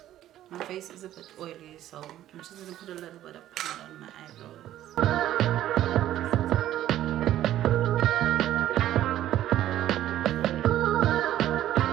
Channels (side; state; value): left; quieter; 12.9 dB